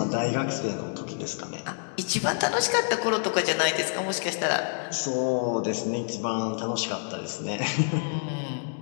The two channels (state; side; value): silent; right; digital silence